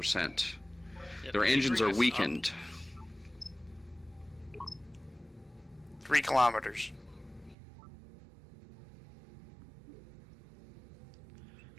Yep, Their keep engines bringing are us up. weakened. 3 kilometers.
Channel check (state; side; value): drops out; left; at 7.6 s